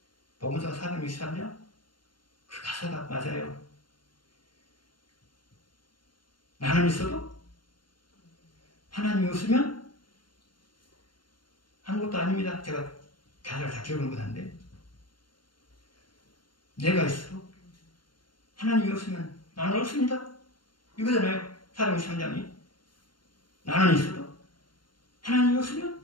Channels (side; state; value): right; late; 0.72 ms